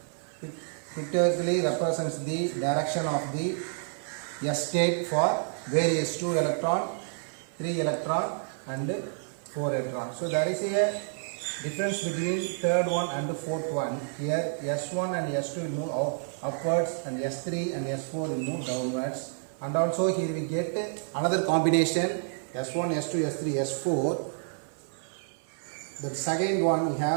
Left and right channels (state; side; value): silent; left; digital silence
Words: pictorially represents the direction of the S state for various 2 electron, 3 electron and 4 electron. So there is a difference between third one and the fourth one. Here S1 and S2 will move upwards and S3 and S4 will move downwards. And also here we get another combination S1, S2, S3, S4. The second one we